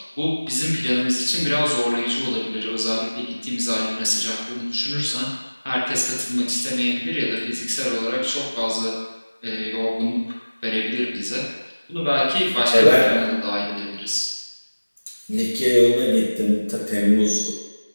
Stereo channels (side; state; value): both; inverted; correlation -1.00